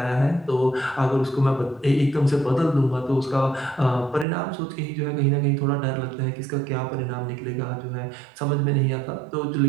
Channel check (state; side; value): drops out; left; at 4.2 s